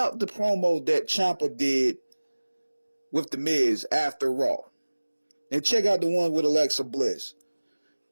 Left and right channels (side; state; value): both; inverted; correlation -1.00